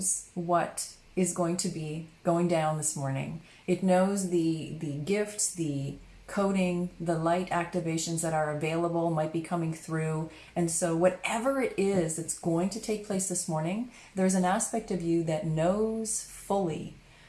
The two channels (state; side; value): identical; both; correlation 1.00